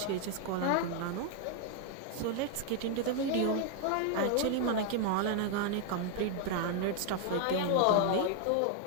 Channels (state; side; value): different; both; correlation 0.00